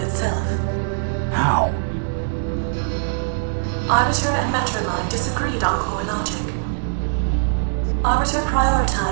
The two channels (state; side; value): silent; left; 65 dB below the other